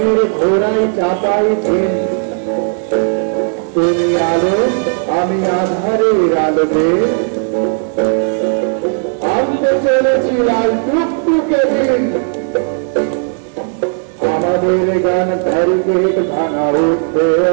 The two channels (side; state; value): left; silent; 61 dB below the other